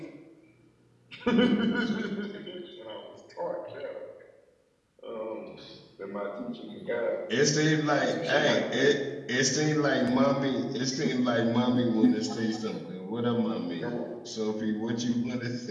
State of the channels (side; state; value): both; identical; correlation 1.00